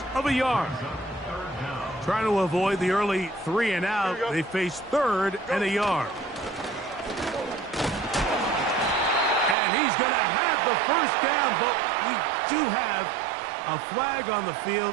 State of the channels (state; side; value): drops out; left; at 9.6 s